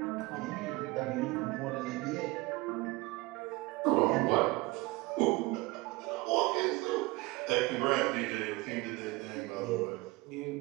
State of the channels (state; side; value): quieter; left; 22.0 dB